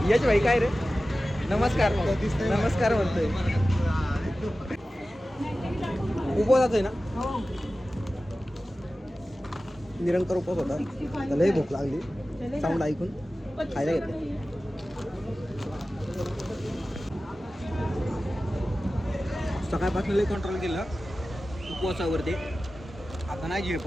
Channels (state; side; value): normal; both; correlation 0.95